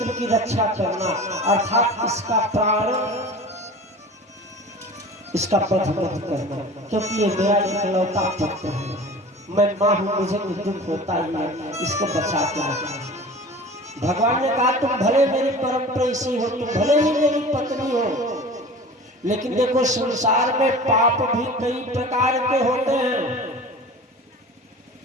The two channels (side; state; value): both; normal; correlation 0.38